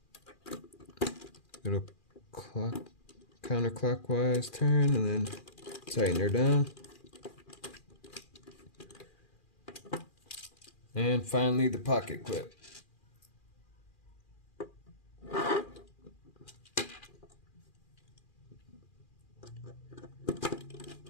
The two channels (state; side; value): late; right; 2.4 ms